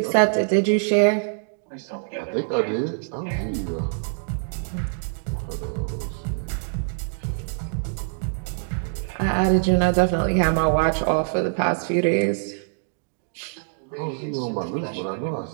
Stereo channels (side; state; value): left; silent; digital silence